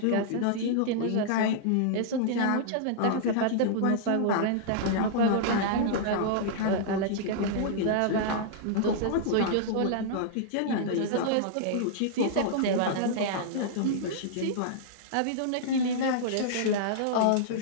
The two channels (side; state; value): both; different; correlation -0.02